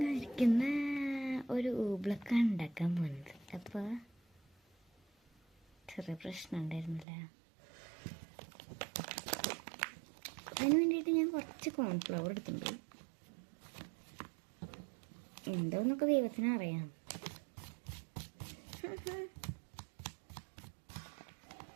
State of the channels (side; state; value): left; drops out; at 7.1 s